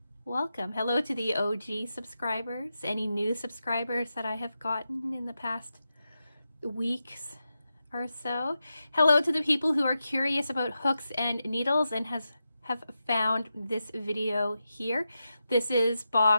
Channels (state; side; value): inverted; both; correlation -0.89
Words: welcome. Hello to the OG subscribers, any new subscribers that I have gotten in the past weeks or so. Hello to the people who are curious about hooks and needles and have found this video here. This is